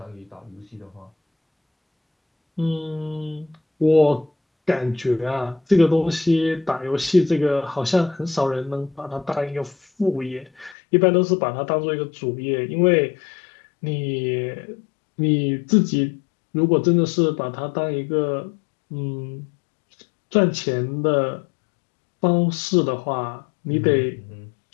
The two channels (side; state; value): right; drops out; at 10.8 s